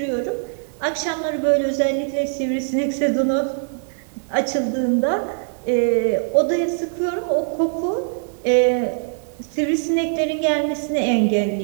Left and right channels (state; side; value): silent; left; 64 dB below the other